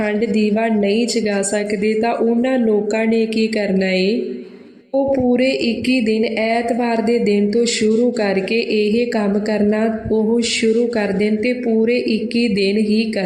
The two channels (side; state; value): both; identical; correlation 1.00